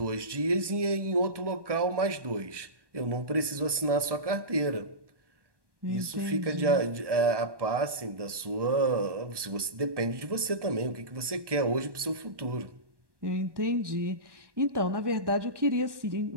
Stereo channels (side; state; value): left; late; 1.1 ms